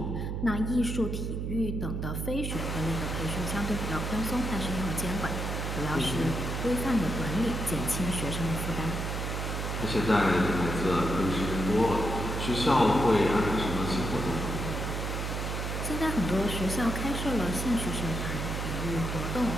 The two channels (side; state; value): right; noise; hum, 3 dB below the sound